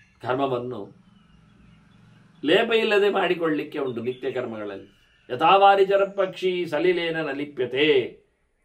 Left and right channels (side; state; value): both; identical; correlation 1.00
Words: ಕರ್ಮವನ್ನು ಲೇಪ ಇಲ್ಲದೆ ಮಾಡಿಕೊಳ್ಳಲಿಕ್ಕೆ ಉಂಟು ನಿತ್ಯ ಕರ್ಮಗಳಲ್ಲಿ. ಯಥಾವಾರಿಚರ ಪಕ್ಷಿ ಸಲಿಲೇನ ನಲಿಪ್ಯತೆ.